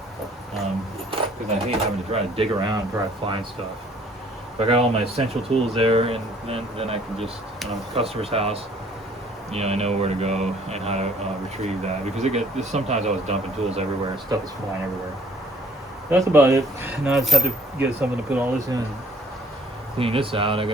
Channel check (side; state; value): both; normal; correlation 0.58